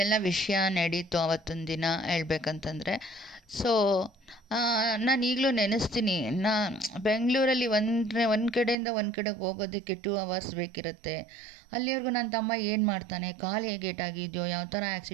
ವಿಷಯ ನಡೀತು ಅವತ್ತೊಂದು ದಿನ ಹೇಳ್ಬೇಕಂತಂದರೆ. ಸೊ ನಾನು ಈಗಲೂ ನೆನೆಸ್ತೀನಿ, ಬೆಂಗಳೂರಲ್ಲಿ ಒಂದು ಕಡೆಯಿಂದ ಒಂದು ಕಡೆಗೆ ಹೋಗೋದಕ್ಕೆ 2 hours ಬೇಕಿರುತ್ತೆ. ಅಲ್ಲಿವರೆಗೂ ನನ್ನ ತಮ್ಮ ಏನು ಮಾಡ್ತಾನೆ, ಕಾಲು ಹೇಗೆ ಏಟಾಗಿದೆಯೋ, ಯಾವ ಥರ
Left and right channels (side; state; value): left; drops out; at 8.8 s